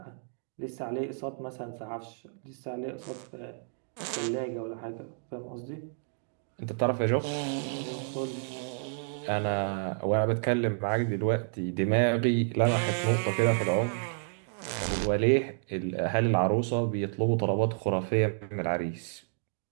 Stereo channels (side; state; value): left; silent; digital silence